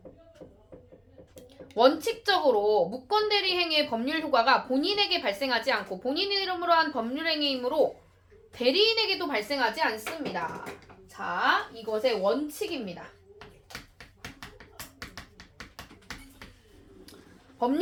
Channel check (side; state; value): both; identical; correlation 1.00